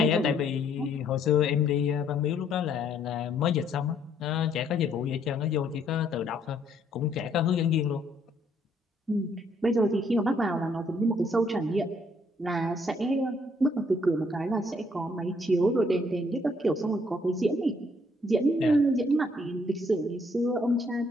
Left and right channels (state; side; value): normal; both; correlation 0.67